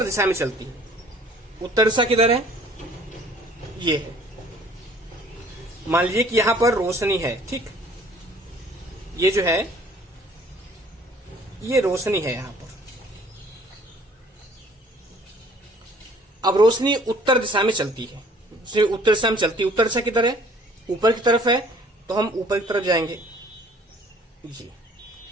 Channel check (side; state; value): both; normal; correlation 0.55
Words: दिशा में चलती है, उत्तर दिशा किधर है, ये है। मान लीजिए कि यहां पर रोशनी है, ठीक, ये जो है ये रोशनी है यहां पर। अब रोशनी उत्तर दिशा में चलती है, उत्तर दिशा में चलती है। उत्तर दिशा किधर है, ऊपर की तरफ है, तो हम ऊपर की तरफ जाएंगे जी।